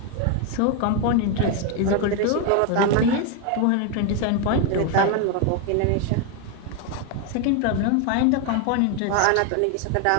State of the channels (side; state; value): both; different; correlation 0.01